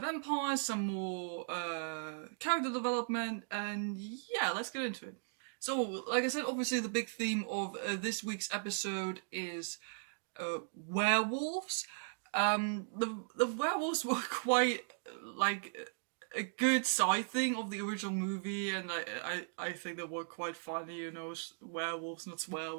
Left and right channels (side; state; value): left; silent; digital silence